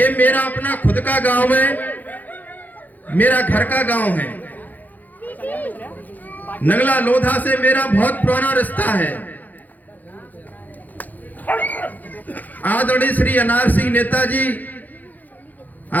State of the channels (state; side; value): late; right; 0.082 ms